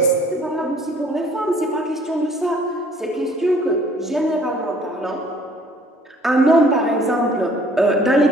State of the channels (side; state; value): both; normal; correlation 0.56